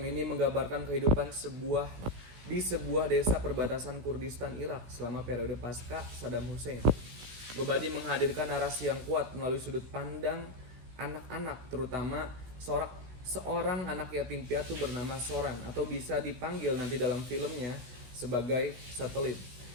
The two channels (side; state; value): left; late; 16 ms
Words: ini menggambarkan kehidupan di sebuah desa perbatasan Kurdistan Irak selama periode pasca Saddam Hussein. Gobadi menghadirkan narasi yang kuat melalui sudut pandang anak-anak, terutama seorang anak yatim piatu bernama Soran, atau bisa dipanggil nanti dalam filmnya sebagai Satelit,